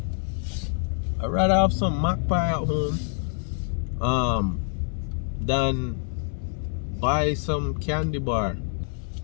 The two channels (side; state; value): right; silent; 58 dB below the other